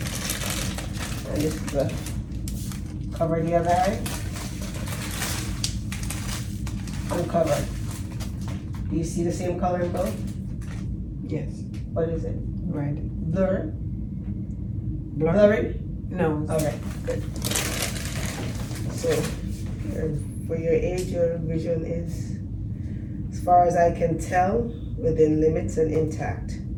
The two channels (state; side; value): identical; both; correlation 1.00